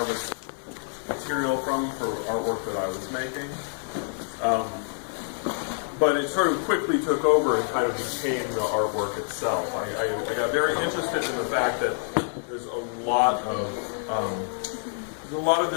material from for artwork that I was making. But it sort of quickly took over and kind of became the artwork itself. I got very interested in the fact that there's a lot of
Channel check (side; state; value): right; silent; 60 dB below the other